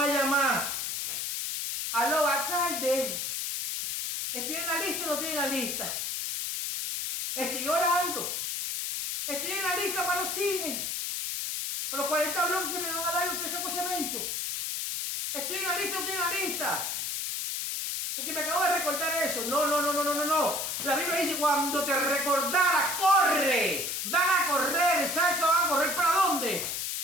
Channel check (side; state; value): left; noise; hiss, 2 dB below the sound